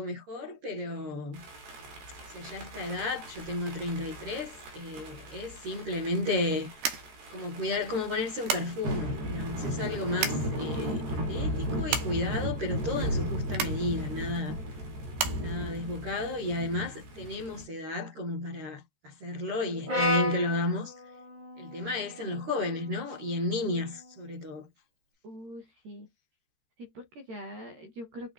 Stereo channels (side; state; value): left; late; 13 ms